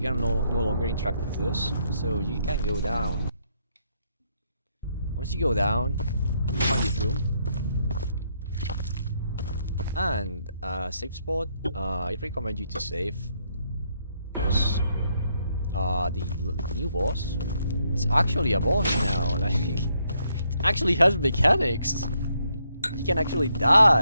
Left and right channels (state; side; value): inverted; both; correlation -0.75